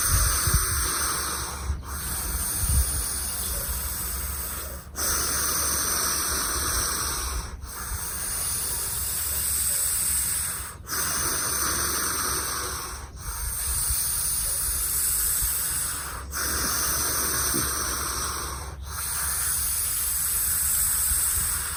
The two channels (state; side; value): identical; both; correlation 1.00